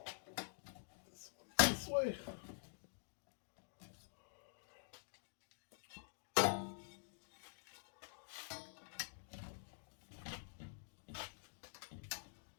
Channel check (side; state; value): right; silent; digital silence